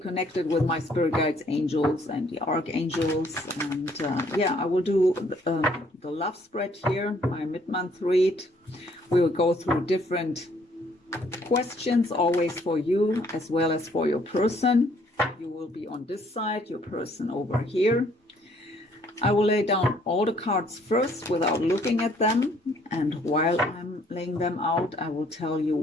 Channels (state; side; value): normal; both; correlation 0.63